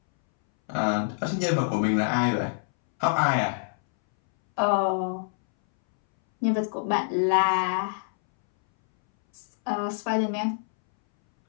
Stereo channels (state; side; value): silent; right; 61 dB below the other